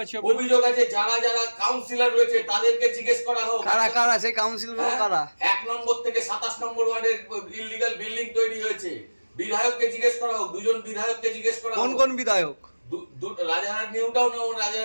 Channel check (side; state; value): both; inverted; correlation -1.00